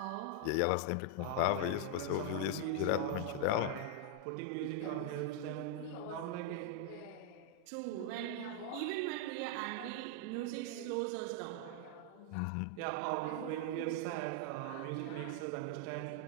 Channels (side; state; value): both; different; correlation 0.00